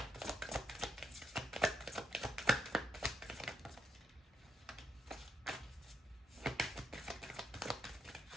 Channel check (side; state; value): both; normal; correlation 0.75